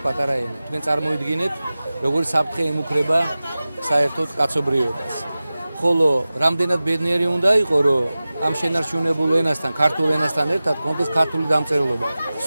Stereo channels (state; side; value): inverted; both; correlation -0.96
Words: პატარა ენა. თქვენ წარმოიდგინეთ, როგორი საფრთხე ემუქრება საერთოდ კაცობრიობას. ხოლო რამდენად ბედნიერი უნდა იყო, რომ ამ შენარჩუნებულ ენასთან, ქართულ ენასთან ერთად კონდეს ქართული დამწერლობა.